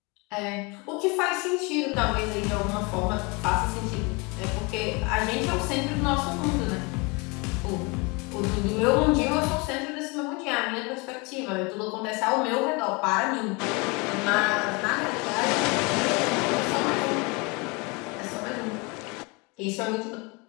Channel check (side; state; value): right; quieter; 28.5 dB